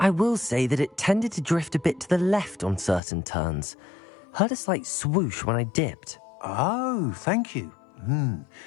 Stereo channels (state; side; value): drops out; right; at 3.0 s